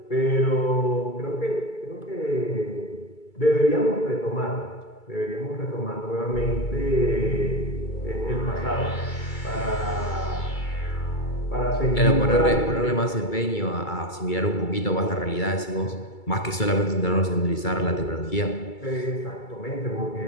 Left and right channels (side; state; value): right; late; 2.3 ms